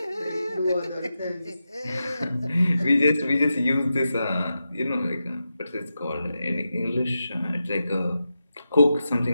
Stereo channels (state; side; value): inverted; both; correlation -0.90